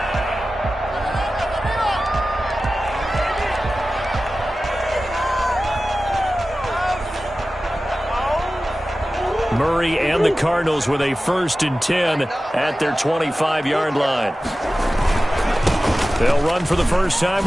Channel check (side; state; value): both; normal; correlation 0.95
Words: Murray and the Cardinals with a 1st and 10 at their 25-yard line. They'll run for the first time